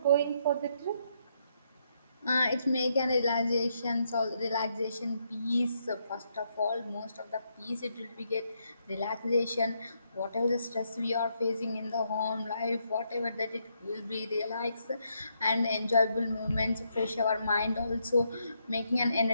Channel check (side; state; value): both; inverted; correlation -0.77